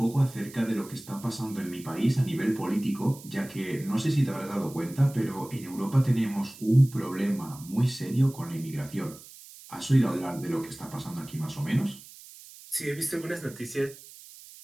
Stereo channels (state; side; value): noise; right; hiss, 18 dB below the sound